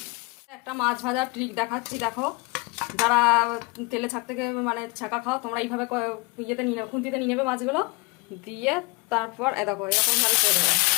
একটা মাছ ভাজার ট্রিক দেখাচ্ছি, দেখো। যারা তেলে ছাক থেকে মানে ছাকা খাও, তোমরা এইভাবে ইয়েতে নিয়ে নেবে, খুন্তিতে নিয়ে নেবে মাছগুলো, দিয়ে তারপর দেখো এরকমভাবে ছেড়ে দেবে।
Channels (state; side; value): quieter; right; 27.8 dB